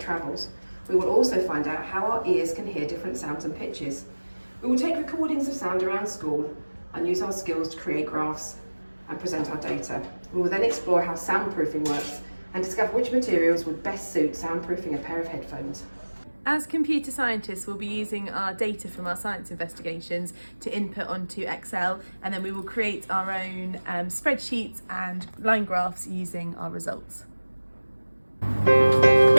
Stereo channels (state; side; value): inverted; both; correlation -1.00